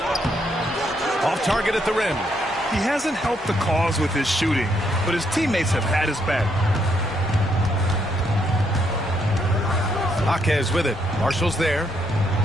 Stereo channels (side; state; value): both; normal; correlation 0.74